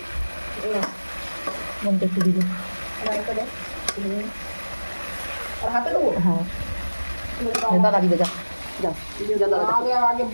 বোনকে একটু দিবি। হ্যাঁ দাদা দিবে, যা যাও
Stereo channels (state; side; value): inverted; both; correlation -1.00